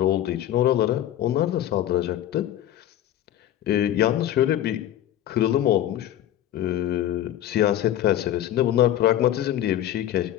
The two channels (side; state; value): right; quieter; 12.1 dB